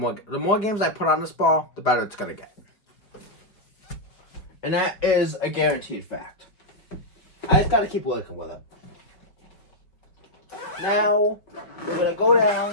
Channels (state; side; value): late; right; 4.7 ms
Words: more games I put on this ball, the better it's going to get. And that is a guaranteed fact. I just got to keep working with it. Now, we're going to go